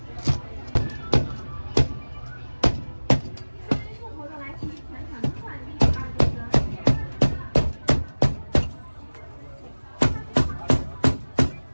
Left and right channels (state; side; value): inverted; both; correlation -1.00